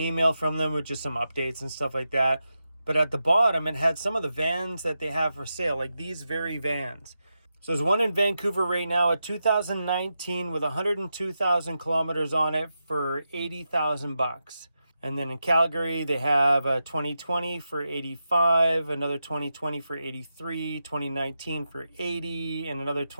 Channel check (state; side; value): inverted; both; correlation -0.88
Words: from them with just some updates and stuff like that. But at the bottom, it had some of the vans that they have for sale, like these very vans. So there's one in Vancouver right now, a 2019 with 102,000 kilometers on it for $80,000. And then in Calgary, they have a 2020 for 85, another 2020 for 83, 2019 for 80, and another